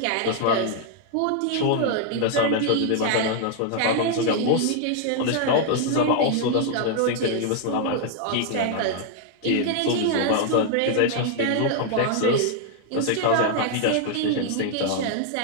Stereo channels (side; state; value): both; different; correlation 0.00